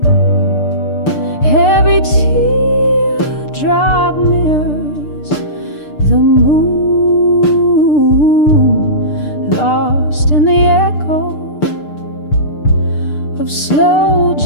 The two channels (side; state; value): right; late; 6.7 ms